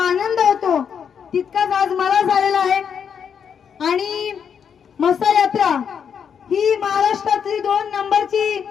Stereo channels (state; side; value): quieter; right; 7.4 dB